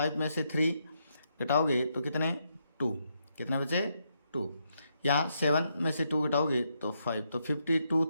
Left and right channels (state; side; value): inverted; both; correlation -0.79